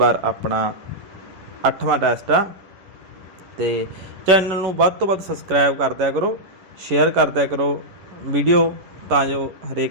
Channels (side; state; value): left; late; 11 ms